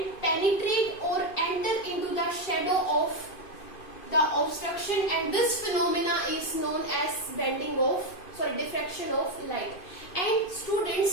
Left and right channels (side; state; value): right; late; 2.5 ms